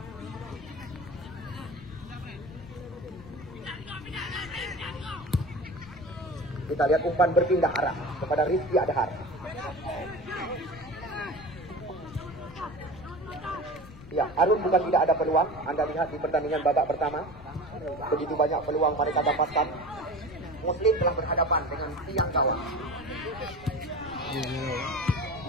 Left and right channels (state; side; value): noise; left; rumble, 17 dB below the sound